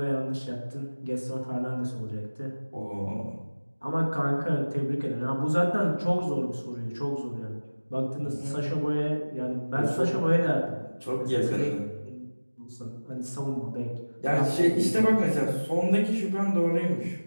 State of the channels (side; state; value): both; inverted; correlation -1.00